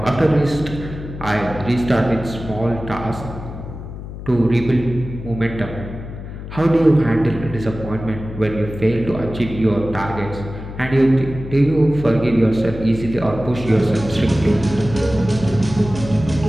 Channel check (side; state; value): left; noise; hum, 10 dB below the sound